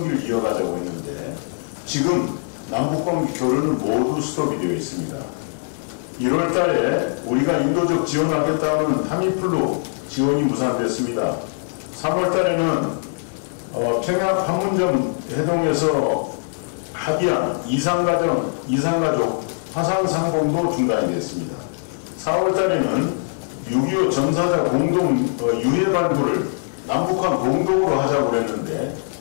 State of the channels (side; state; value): right; silent; 64 dB below the other